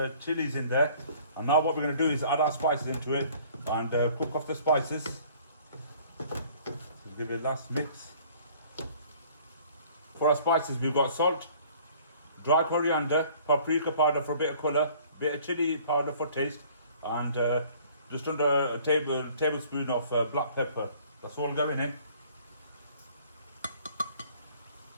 chilies in there. And now what we're going to do is add our spices into it and cook off the spices. Just give it a last mix. For our spices, we've got salt, dry coriander, paprika powder for a bit of colour, bit of chili powder for taste, and just under a tablespoon of black pepper. That's all going in.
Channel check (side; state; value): both; inverted; correlation -0.53